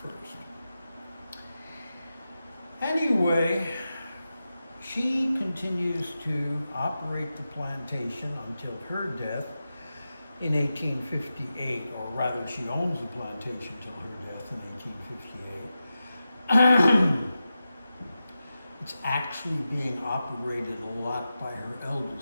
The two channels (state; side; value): inverted; both; correlation -0.92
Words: I. Anyway, she continues to operate the plantation until her death in 1858, or rather she owns the plantation till her death in 1858. It's actually being operated a lot by her